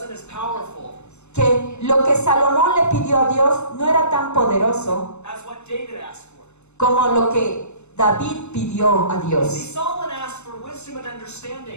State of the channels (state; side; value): late; right; 0.82 ms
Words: as powerful que lo que Salomón le pidió a Dios no era tan poderoso as what David asked for. como lo que David pidió a See, Dios. Solomon asked for wisdom and